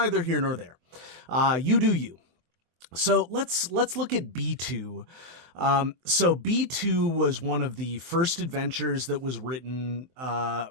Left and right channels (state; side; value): late; left; 23 ms